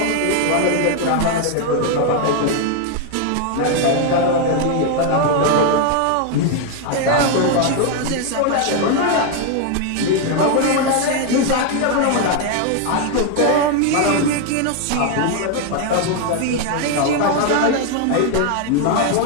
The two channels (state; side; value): different; both; correlation 0.01